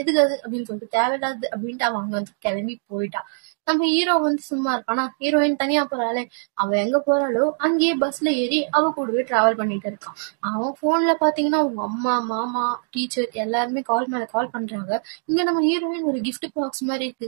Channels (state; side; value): silent; left; digital silence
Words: எதுக்கு அது அப்படின்னு சொல்லிட்டு தேவையில்லாது அப்படின்ட்டு அவன் அங்க வந்து கிளம்பி போயிட்டா. நம்ம ஹீரோ வந்து சும்மா இருப்பானா, ஹீரோயின் தனியா போறாளே, அவ எங்க போறாளோ அங்கேயே பஸ்ல ஏறி அவ கூடவே டிராவல் பண்ணிட்டு இருக்கான். அவன் போன்ல பாத்தீங்கன்னா அவங்க அம்மா, மாமா, டீச்சர் எல்லாருமே கால் மேல கால் பண்றாங்க. இங்க நம்ம ஹீரோயின் ஒரு கிஃப்ட் பாக்ஸ் மாதிரி